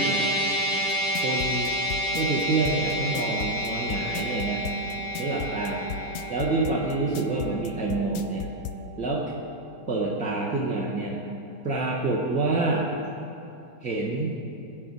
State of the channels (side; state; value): right; late; 4.3 ms